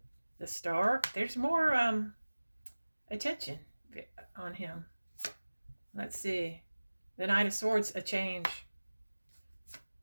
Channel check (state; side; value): inverted; both; correlation -1.00